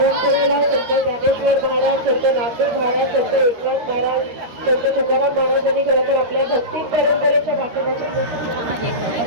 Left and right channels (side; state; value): left; late; 13 ms